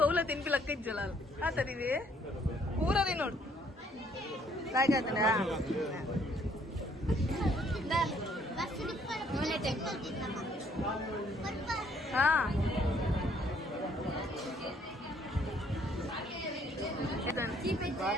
ಹೋಗ್ಲ ತಿನ್ಪಿ ಲಕ್ಕ ಇಜ್ಜಲ್ಲ ಆತದಿವಿ ಪೂರ ತಿನ್ನೋಡು ಲಾಯ್ಕ್ ಆಯ್ತದ ಹಾ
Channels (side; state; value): both; normal; correlation 0.64